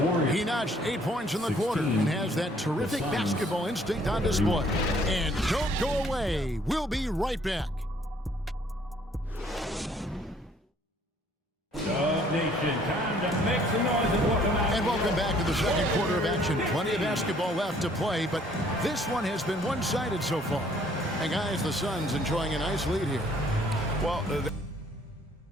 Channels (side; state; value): both; normal; correlation 0.61